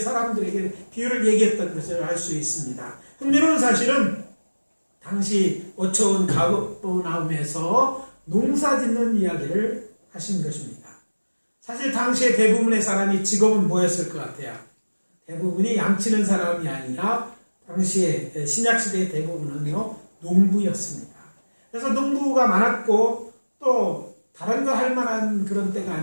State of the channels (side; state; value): both; inverted; correlation -1.00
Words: 사람들에게 비유를 얘기했던 것을 알 수 있습니다. 흥미로운 사실은 당시 어처운 가버나움에서 농사 짓는 이야기를 하신 것입니다. 사실 당시에 대부분의 사람이 직업은 뭐였을 것 같아요? 대부분이 양치는 사람이 아니라 당시에 신약시대의 대부분은요, 농부였습니다. 그래서 농부가 많았고 또 다른 거 할 만한 그런 때가